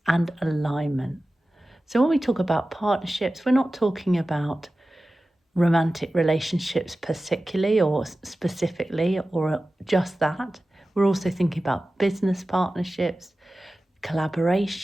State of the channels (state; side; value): normal; both; correlation 0.95